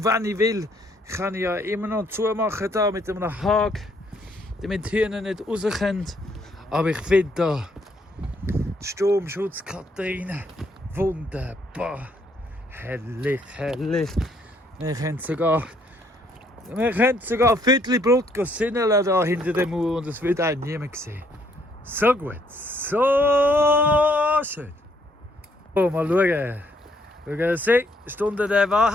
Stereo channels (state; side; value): normal; both; correlation 0.68